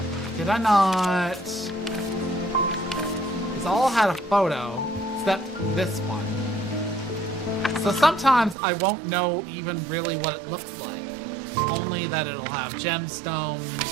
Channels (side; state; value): left; drops out; at 8.6 s